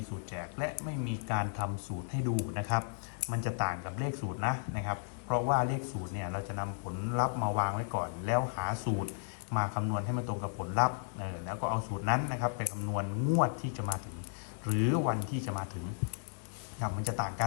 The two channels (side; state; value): right; silent; digital silence